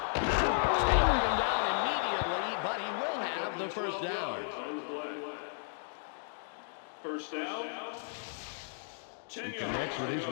Taking him down immediately, but he will have the first down. First down. 10 He connects with his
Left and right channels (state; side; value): silent; right; digital silence